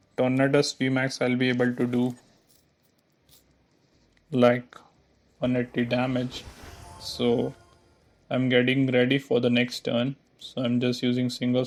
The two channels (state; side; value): identical; both; correlation 1.00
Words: Tornadus VMAX I'll be able to do like 180 damage. So I'm getting ready for the next turn. So I'm just using Single